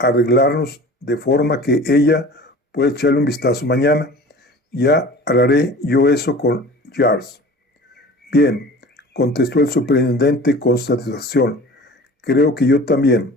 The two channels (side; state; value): both; normal; correlation 0.41